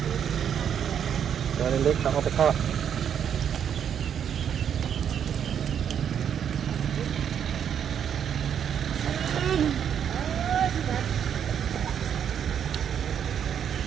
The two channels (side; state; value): left; quieter; 8.6 dB